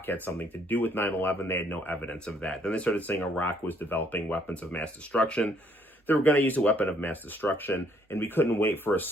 had something to do with 9/11. They had no evidence of that. Then they started saying Iraq was developing weapons of mass destruction. They were going to use a weapon of mass destruction, and we couldn't wait for a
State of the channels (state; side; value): normal; both; correlation 0.66